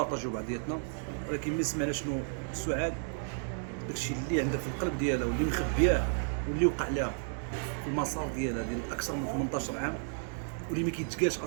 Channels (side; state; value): left; silent; 56 dB below the other